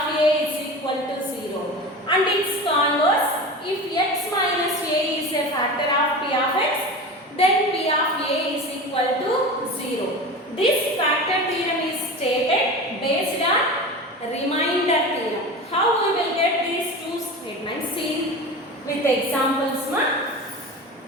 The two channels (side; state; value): both; normal; correlation 0.30